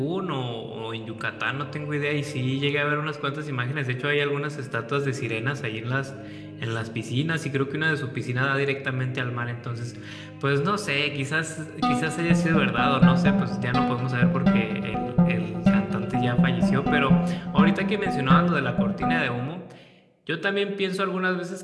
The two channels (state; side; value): identical; both; correlation 1.00